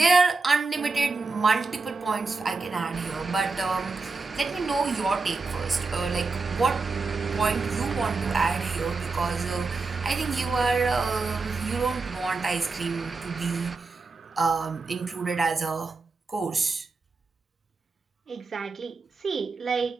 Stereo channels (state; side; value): quieter; left; 4.0 dB